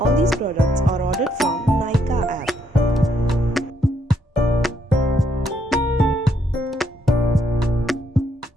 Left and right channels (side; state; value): both; normal; correlation 0.74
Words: these products are ordered from Nykaa app.